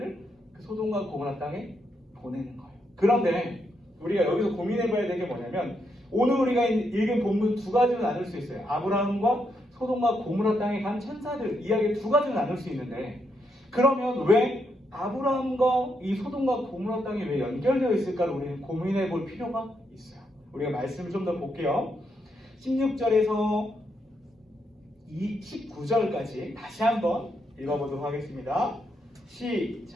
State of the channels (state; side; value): normal; both; correlation 0.79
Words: 그 소돔과 고모라 땅에 보내는 거예요. 그런데 우리가 여기서 고민해봐야 될 게 뭐냐면 오늘 우리가 읽은 본문 두 가지로 나눌 수 있어요. 아브라함과 소돔과 고모라 땅에 간 천사들 이야기 두 가지로 나눌 수 있는데 그러면 왜 아브라함과 이 소돔과 고모라 땅이 왜 연결되어 있을까를 우리는 고민해 볼 필요가 있어요. 우리가 말씀을 좀 더 볼게요. 16절에서 19절까지 다시 한번 읽어보도록 하겠습니다.